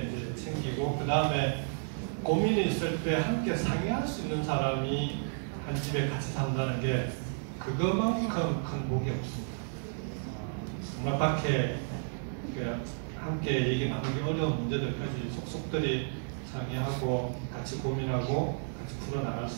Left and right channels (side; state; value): left; silent; 56 dB below the other